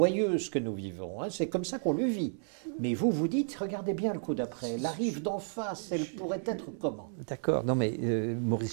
ce que nous vivons, hein. C'est comme ça qu'on le vit. Mais vous dites, regardez bien le coup d'après, la rive d'en face, elle pourrait être comment? D'accord, non mais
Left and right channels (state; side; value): silent; left; 56 dB below the other